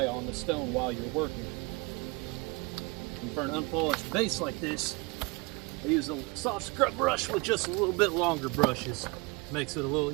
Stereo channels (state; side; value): quieter; left; 27.6 dB